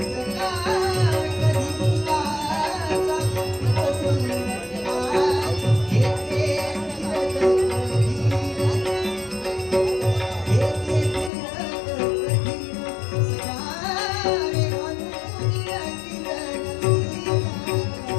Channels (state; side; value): drops out; right; at 11.3 s